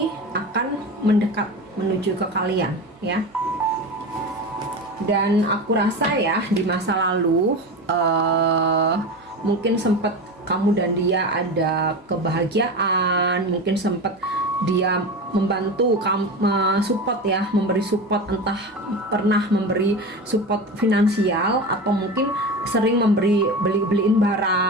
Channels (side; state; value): both; normal; correlation 0.26